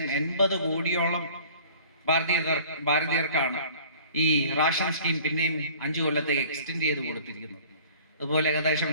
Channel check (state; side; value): inverted; both; correlation -0.48